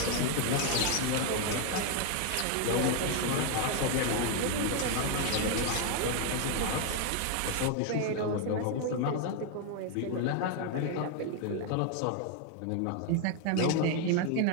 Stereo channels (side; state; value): both; different; correlation 0.01